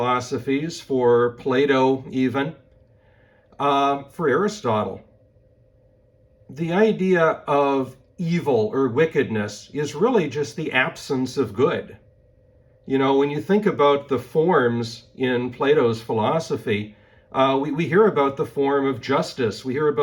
for Plato even, for Aristotle, the idea of evil or wickedness is really just the absence of good. You know, when you think about the forms in Plato's philosophy, we hear about the form of justice, we hear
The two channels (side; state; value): both; identical; correlation 1.00